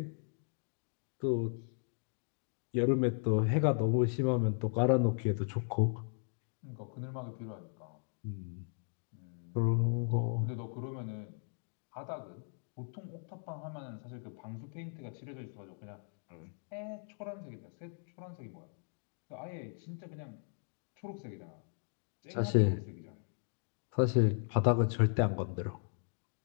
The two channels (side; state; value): right; silent; 53 dB below the other